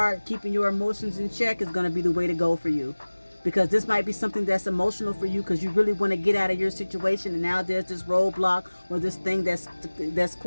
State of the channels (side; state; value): both; inverted; correlation -1.00